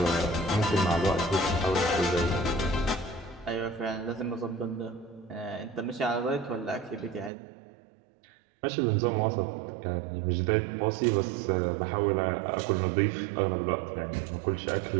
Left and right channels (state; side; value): drops out; left; at 7.3 s